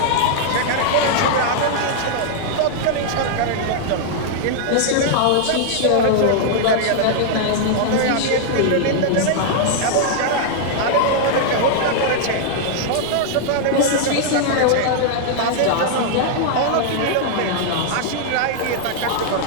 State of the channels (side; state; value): both; different; correlation -0.01